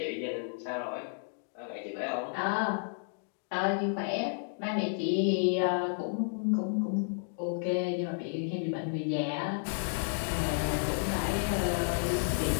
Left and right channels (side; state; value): right; silent; digital silence